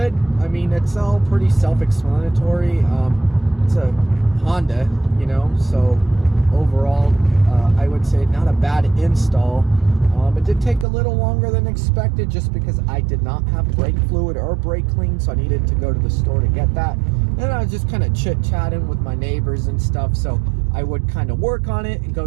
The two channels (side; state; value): left; drops out; at 10.9 s